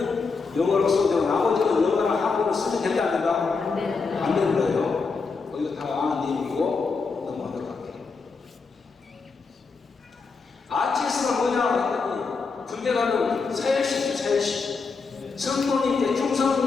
영어로 써도 되고 나머지는 영어나 한국을 쓰면 된다 안 된다? 안 되는 거예요. 이거 다 아는 내용이고 넘어가도록 할게요. RTS가 뭐냐 했더니 군대 가면 사열식 성도님 이제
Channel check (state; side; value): quieter; right; 4.7 dB